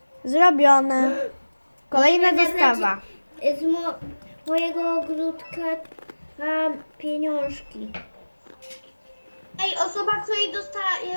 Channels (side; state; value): both; inverted; correlation -1.00